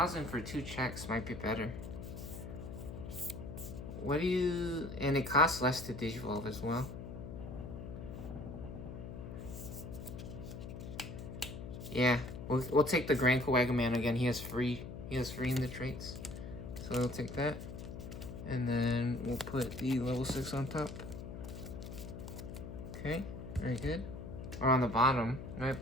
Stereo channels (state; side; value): noise; left; hum, 9 dB below the sound